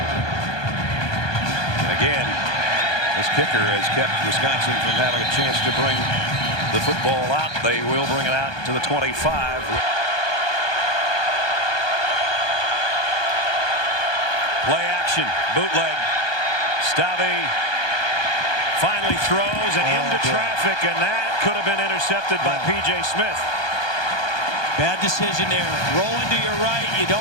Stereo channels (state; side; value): late; right; 1.2 ms